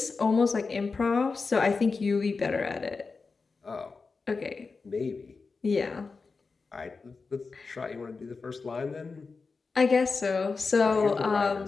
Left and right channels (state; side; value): quieter; right; 4.4 dB